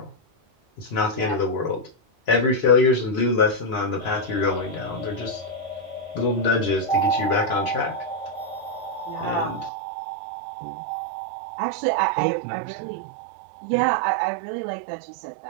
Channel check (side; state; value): left; drops out; at 9.7 s